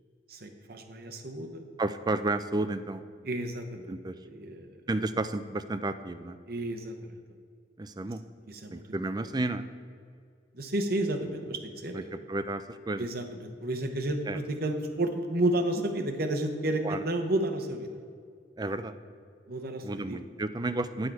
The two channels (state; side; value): normal; both; correlation 0.54